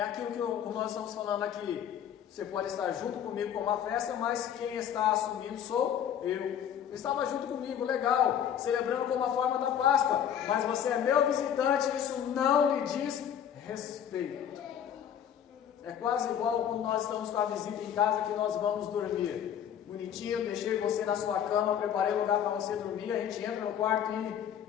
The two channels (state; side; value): quieter; right; 9.2 dB